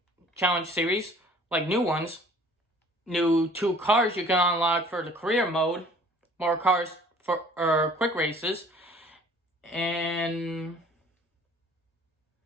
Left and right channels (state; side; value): normal; both; correlation 0.52